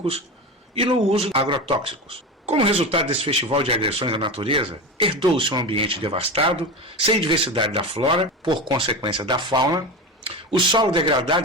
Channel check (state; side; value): normal; both; correlation 0.24